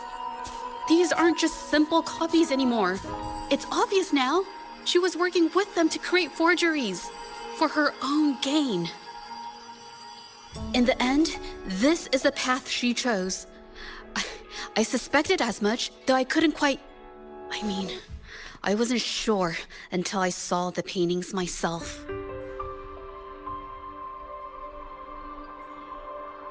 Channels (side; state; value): both; identical; correlation 1.00